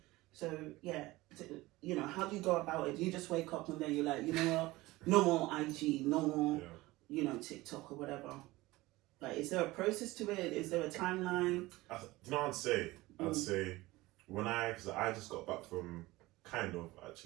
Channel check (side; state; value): left; quieter; 19.5 dB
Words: So yeah, how do you go about it? Do you just wake up and then you're like, you know what, no more IG, no more, TikTok or whatever? Like, is there a process to it? Is there a timeline? I'd say because I just got back from